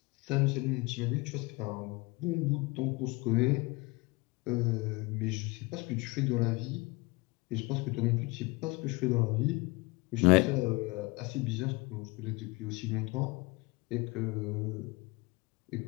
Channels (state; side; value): quieter; right; 24.8 dB